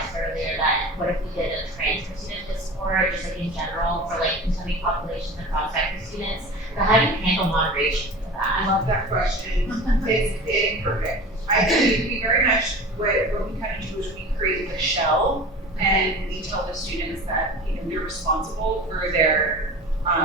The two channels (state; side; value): normal; both; correlation 0.35